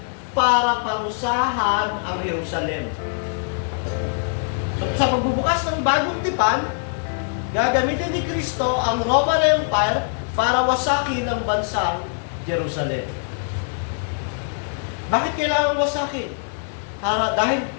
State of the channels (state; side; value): silent; right; 64 dB below the other